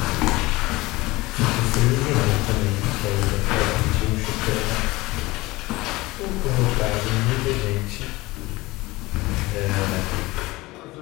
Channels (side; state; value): right; quieter; 20.8 dB